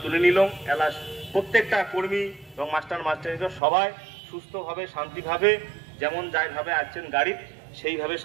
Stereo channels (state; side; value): drops out; left; at 3.6 s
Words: তুলে নিলাম। এলাস প্রত্যেকটা কর্মী এবং মাস্টারনিরা সবাই সুস্থভাবে শান্তিভাবে যেমন যাইভাবে আসছেন গাড়ি, সেইভাবে